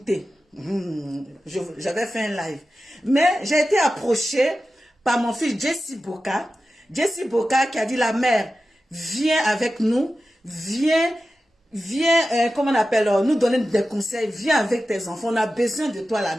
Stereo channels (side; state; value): both; normal; correlation 0.93